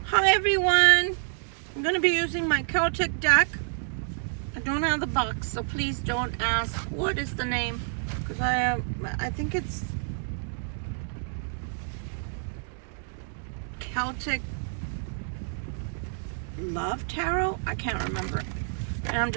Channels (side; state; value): left; silent; digital silence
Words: Hi everyone, I'm going to be using my Celtic deck. I don't have the box, so please don't ask what is the name, because I think it's Celtic Love Tarot. I can't remember, and I'm